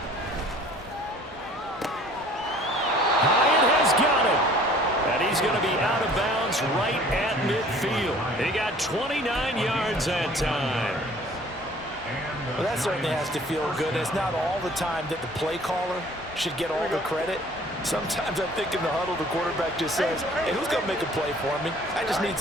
Hyatt has got it. And he's going to be out of bounds right at midfield. He got 29 yards that time. Well, that certainly has to feel good. It's not all the time that the play caller should get all the credit. Sometimes I think in the huddle, the quarterback just says, hey, who's going to make a play for me? I just need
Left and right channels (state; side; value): normal; both; correlation 0.52